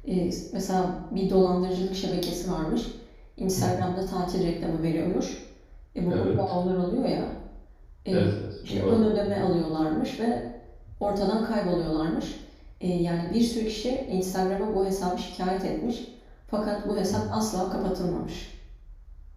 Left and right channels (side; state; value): both; identical; correlation 1.00